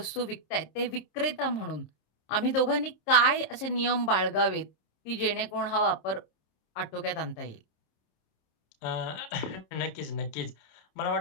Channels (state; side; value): late; right; 26 ms